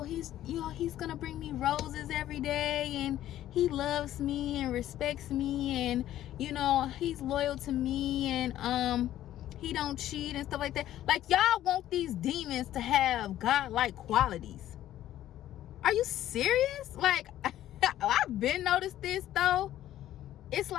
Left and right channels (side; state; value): right; quieter; 12.9 dB